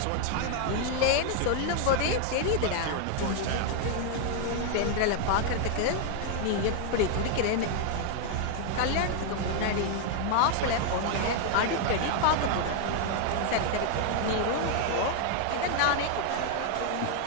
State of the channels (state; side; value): different; both; correlation 0.00